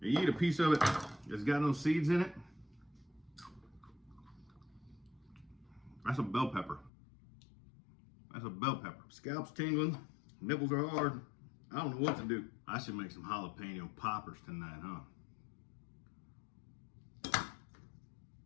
you eat a piece of it that's got no seeds in it, that's a bell pepper. That's a bell pepper. Scalp's tingling, nipples are hard. I don't know what to do. I should make some jalapeno poppers tonight, huh?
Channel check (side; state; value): right; drops out; at 6.9 s